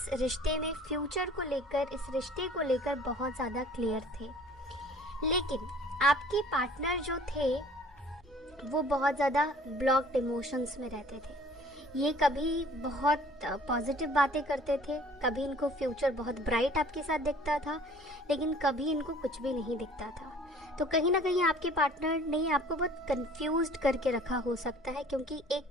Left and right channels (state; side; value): normal; both; correlation 0.51